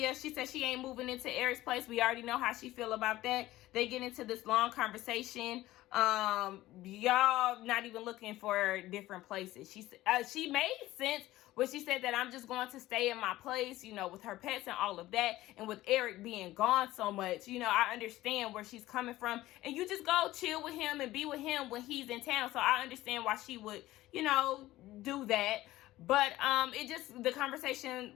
she said she ain't moving into Eric's place. We already know how she feel about that. They get into this long conversation. Y'all not even looking for different places. She made sense when she said that I'm just going to stay in my place, you know, with her pets and all of that. And with Eric being gone so much, you know, I understand where she's coming from. And you just go chill with him and be with him when he's in town. So I understand why she would, you know, do that. But the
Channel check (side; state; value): right; quieter; 16.3 dB